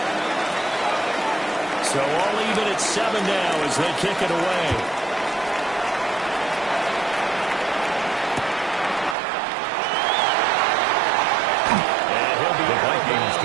So all even at 7 now as they kick it away. And he'll be the Vikings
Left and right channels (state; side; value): drops out; left; at 9.2 s